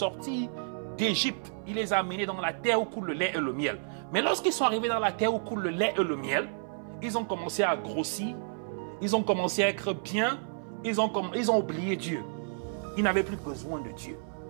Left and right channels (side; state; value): left; silent; 57 dB below the other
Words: d'Égypte. Il les a amenés dans la terre où coule le lait et le miel. Mais lorsqu'ils sont arrivés dans la terre où coule le lait et le miel, ils ont commencé à grossir. Ils ont commencé à être bien. Ils ont oublié Dieu. Ils n'avaient plus besoin de Dieu.